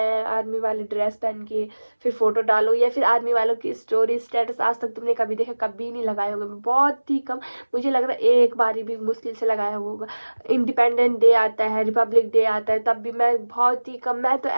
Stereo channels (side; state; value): both; inverted; correlation -1.00